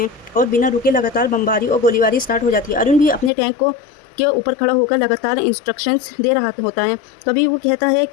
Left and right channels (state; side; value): drops out; right; at 3.3 s